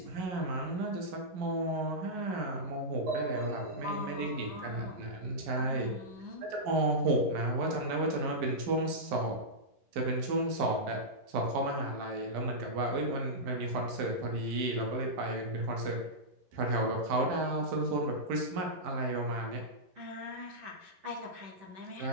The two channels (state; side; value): late; left; 11 ms